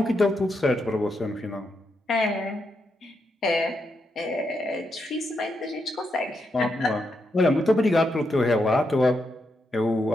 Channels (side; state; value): both; normal; correlation 0.82